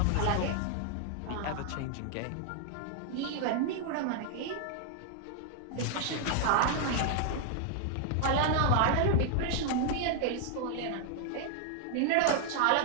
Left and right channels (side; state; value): both; different; correlation 0.00